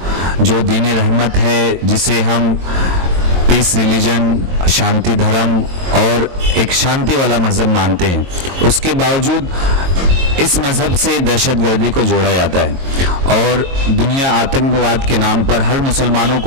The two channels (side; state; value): left; late; 22 ms